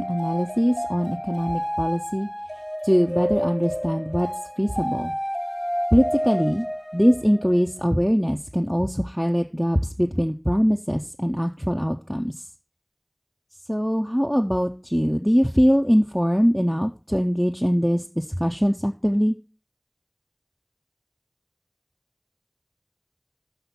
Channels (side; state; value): both; identical; correlation 1.00